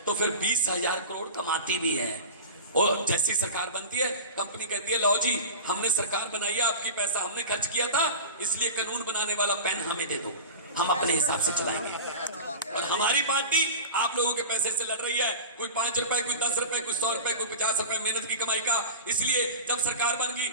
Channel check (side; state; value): both; inverted; correlation -0.30